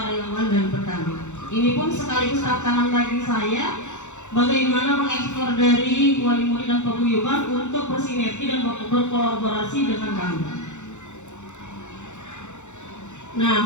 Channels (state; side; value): late; right; 0.84 ms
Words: dan petani. Ini pun sekaligus tantangan bagi saya bagaimana mengeksplor dari wali murid dan paguyuban untuk bersinergi dan berkolaborasi dengan kami.